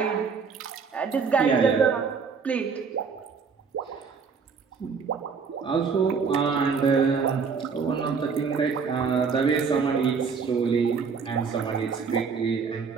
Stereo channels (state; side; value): quieter; left; 5.6 dB